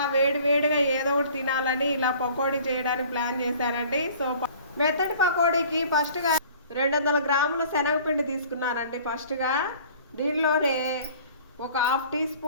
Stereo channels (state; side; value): inverted; both; correlation -0.49